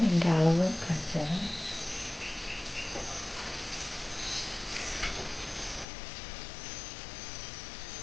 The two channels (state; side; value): drops out; right; at 5.9 s